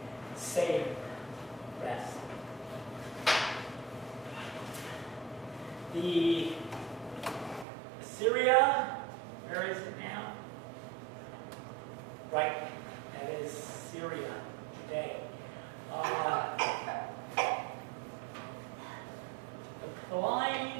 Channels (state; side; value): drops out; left; at 7.7 s